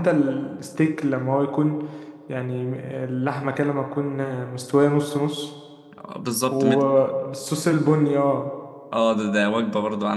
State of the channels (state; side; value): identical; both; correlation 1.00